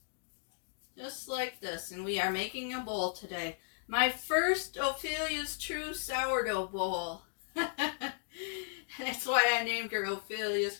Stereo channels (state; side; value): silent; right; digital silence